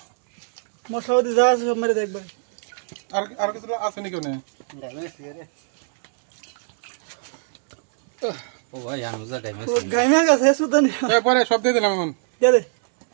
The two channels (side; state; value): left; silent; digital silence